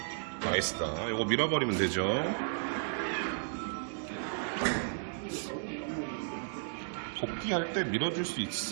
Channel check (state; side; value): silent; left; digital silence